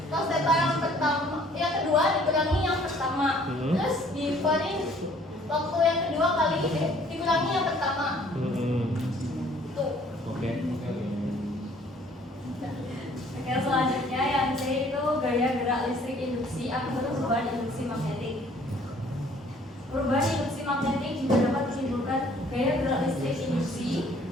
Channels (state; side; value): normal; both; correlation 0.58